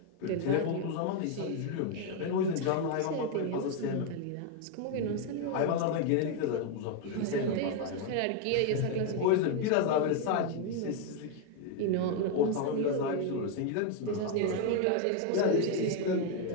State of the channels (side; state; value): both; different; correlation 0.01